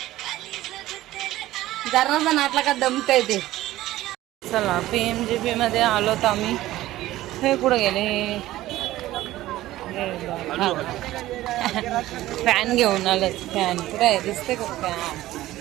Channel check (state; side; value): quieter; left; 15.8 dB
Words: जरा नाटला का दमतय ते. चला PMGP मध्ये आलोत आम्ही. हे कुठं गेले, फॅन घेऊन आलोत. फॅन कुठे आहे, दिसते का फॅन.